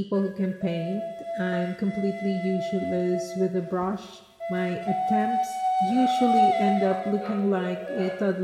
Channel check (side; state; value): both; identical; correlation 1.00